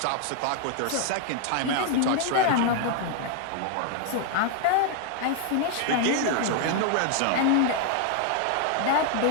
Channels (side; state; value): both; different; correlation 0.00